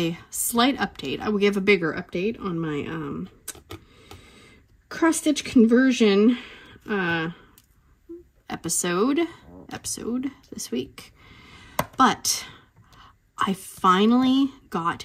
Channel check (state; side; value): identical; both; correlation 1.00